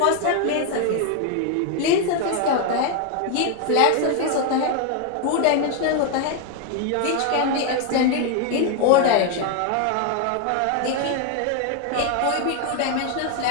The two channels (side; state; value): both; different; correlation 0.01